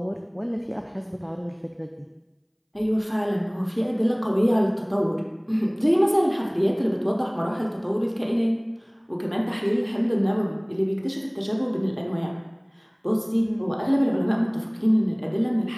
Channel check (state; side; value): identical; both; correlation 1.00